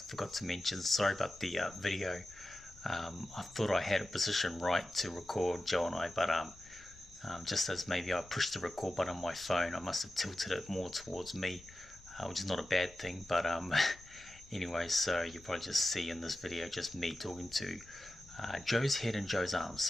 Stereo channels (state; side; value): noise; left; rumble, 23 dB below the sound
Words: to mention. Sorry about the video. I thought I had a position right to record Joe and I, but just as maybe I pushed the record button on my phone, I must have tilted it more towards me, which is not a bad thing. But anyway, so you probably just see in this video just me talking to Joe's head and Joe's arms.